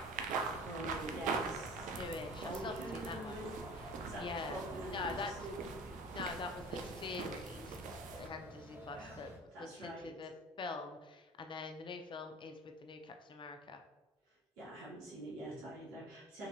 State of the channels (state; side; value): normal; both; correlation 0.41